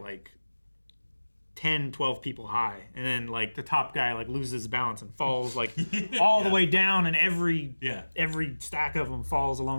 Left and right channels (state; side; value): inverted; both; correlation -1.00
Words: 10, 12 people high. And then like the top guy like loses balance and falls like all the way down, and every stack of them falls